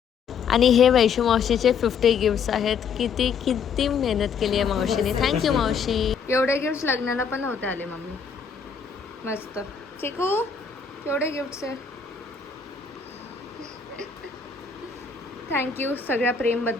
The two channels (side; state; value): right; quieter; 6.2 dB